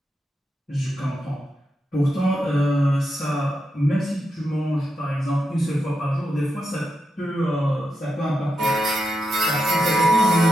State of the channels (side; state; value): both; normal; correlation 0.86